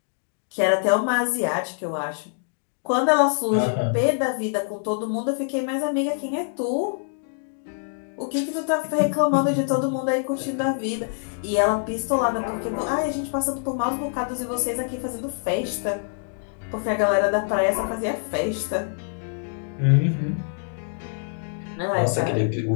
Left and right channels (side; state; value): right; silent; digital silence